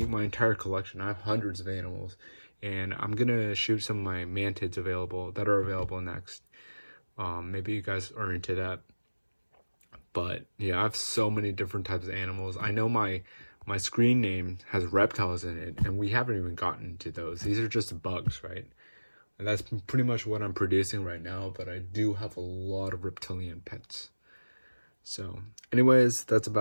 my entire collection. I have hundreds of animals, and I'm gonna shoot some of my mantids that are available next. Maybe you guys are into that. But yeah, I have so many different types of animals. I know my screen name has reptiles in it, and we haven't even gotten to those. These are just bugs, right? And that's pretty much what I'm producing right now, but I do have a lot of reptilian pets. So anyways, that's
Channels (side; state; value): both; inverted; correlation -1.00